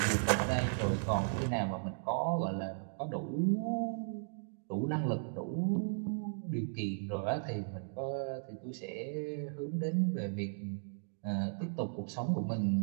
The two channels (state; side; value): silent; left; digital silence